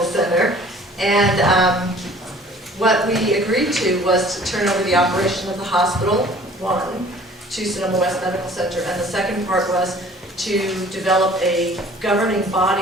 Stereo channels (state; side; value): normal; both; correlation 0.51